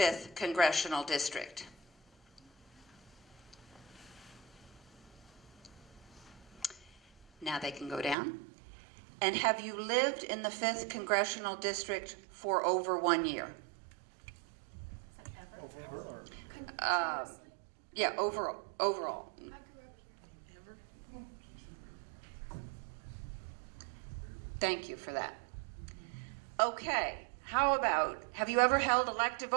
Congressional District? Now they can go down. And have you lived in the 5th Congressional District for over 1 year? Yeah, overall. Thank you for that. Okay, how about, have you ever held elective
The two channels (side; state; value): left; drops out; at 8.2 s